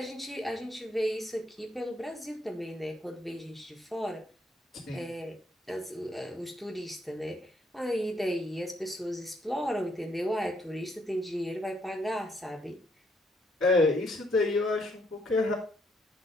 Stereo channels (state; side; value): normal; both; correlation 0.72